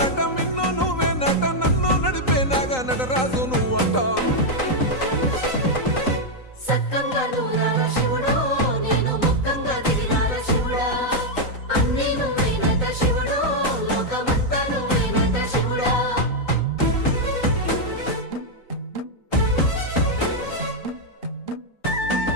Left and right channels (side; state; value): right; late; 3.9 ms